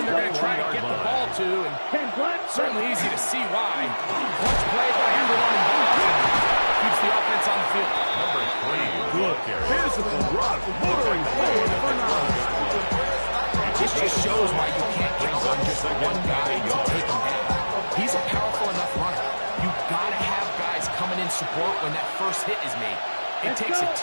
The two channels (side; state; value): both; inverted; correlation -1.00